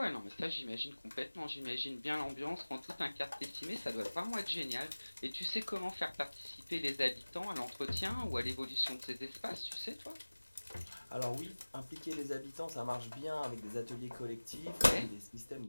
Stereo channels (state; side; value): inverted; both; correlation -1.00